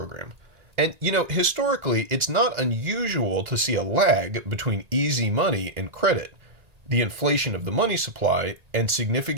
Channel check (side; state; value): left; late; 1.9 ms